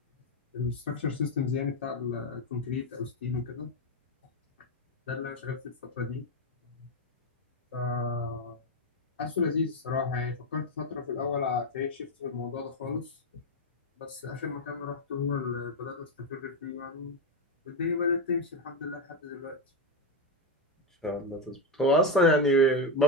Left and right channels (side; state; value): both; normal; correlation 0.07